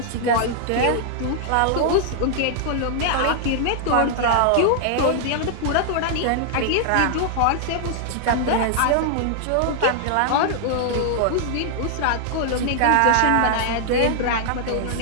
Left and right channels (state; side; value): different; both; correlation -0.01